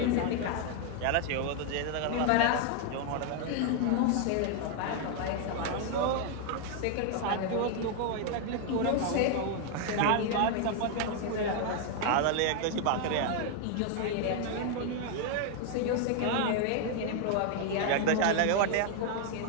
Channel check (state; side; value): different; both; correlation 0.00